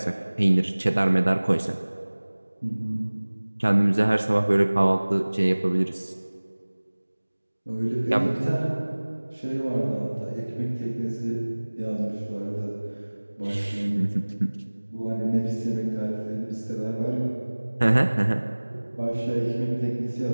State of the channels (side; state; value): both; inverted; correlation -1.00